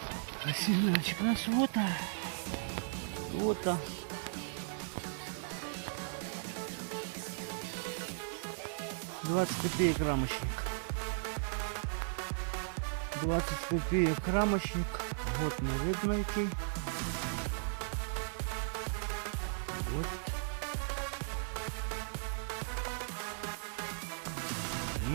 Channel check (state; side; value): silent; left; digital silence